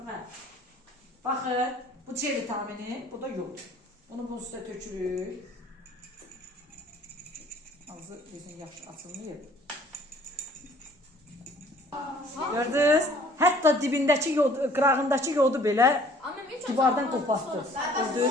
Hə. Baxın, bu C vitamini, bu da yod. Onu bunun üstə tökürük. Ağzı bizim yaxşı açılmayıb. Gördünüz? Hətta dibindəki yod, qırağındakı yodu belə divardan qopartdı.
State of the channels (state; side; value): normal; both; correlation 0.55